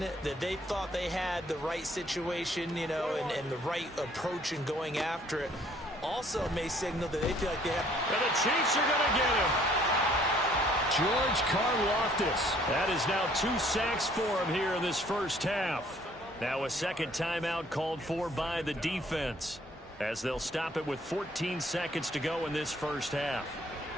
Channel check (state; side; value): normal; both; correlation 0.60